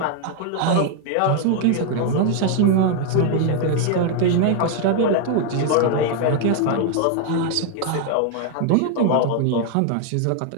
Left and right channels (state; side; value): different; both; correlation 0.00